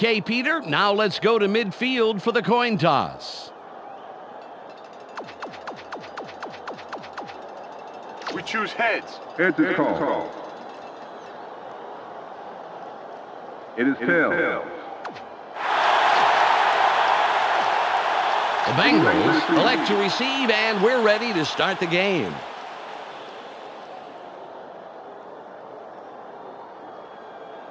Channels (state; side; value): identical; both; correlation 1.00